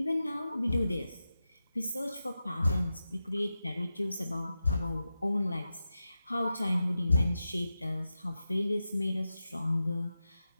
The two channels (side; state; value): both; inverted; correlation -0.91